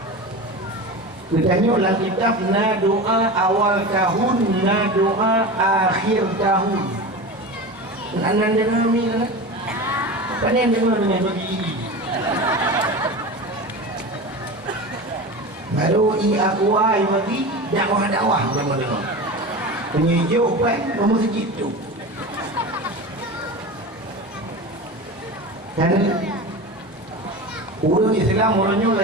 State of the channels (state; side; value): normal; both; correlation 0.29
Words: Katanya dalam kitab na doa awal tahun, na doa akhir tahun. Anak dengar ni kan? Apa ni dengar dengan bagi? Baru aku ai bagi dakwah sama dengar. Penyejuk kan kamu segitu. Dan orang Islam orangnya